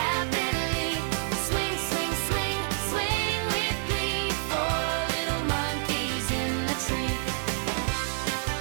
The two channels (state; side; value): silent; left; digital silence